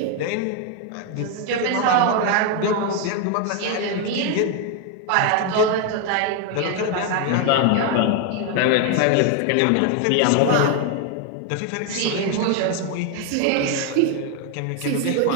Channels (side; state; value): both; different; correlation 0.01